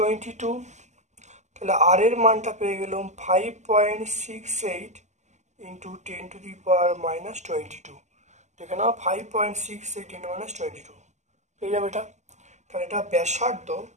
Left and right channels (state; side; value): late; left; 0.34 ms